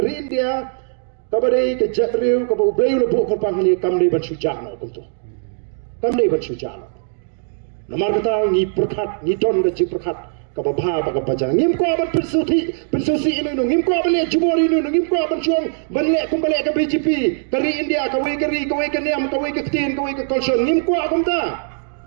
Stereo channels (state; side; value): silent; left; digital silence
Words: India kabadai ke jatriu ke bau beu lebu korpang ni kamli ban sujana kuntu kamli ban sujana namar kata ni perkat ni don ke perkat kababha ba kabajang ngim ko ban persuti ini ngim ko ban le jumori ini ngim ko ban chuang ban le kum bale ke BJP kari India kawai ke niam kawai ke tin kawai ke kolson ngim ko akumta